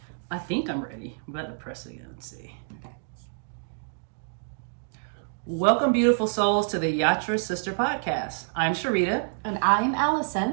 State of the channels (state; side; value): silent; left; digital silence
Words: I think I'm ready. I'm about to press it again and see. Okay. Welcome, beautiful souls, to the Yatra Sister Podcast. I'm Sharita. And I'm